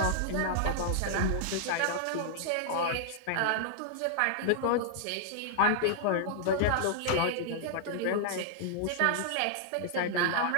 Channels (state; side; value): different; both; correlation -0.01